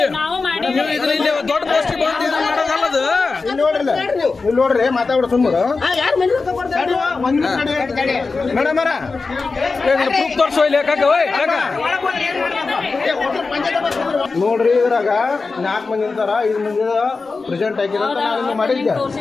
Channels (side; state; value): right; quieter; 4.1 dB